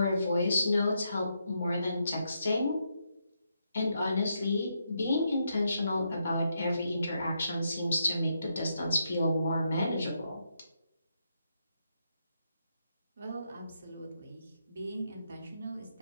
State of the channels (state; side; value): inverted; both; correlation -0.80